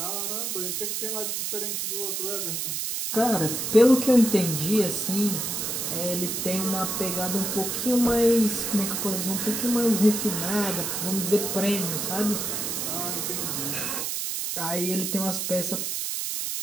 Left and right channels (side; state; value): right; noise; hiss, 2 dB below the sound